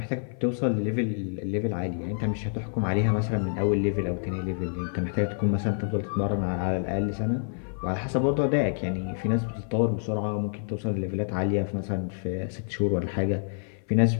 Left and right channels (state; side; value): silent; right; 56 dB below the other